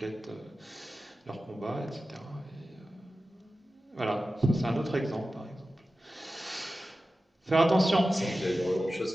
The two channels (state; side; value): normal; both; correlation 0.94